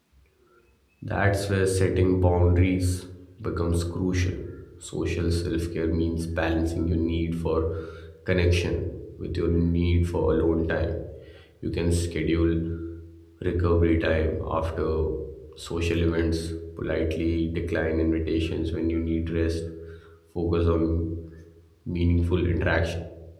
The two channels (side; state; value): both; identical; correlation 1.00